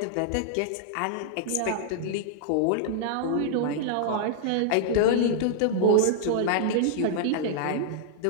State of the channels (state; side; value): different; both; correlation -0.01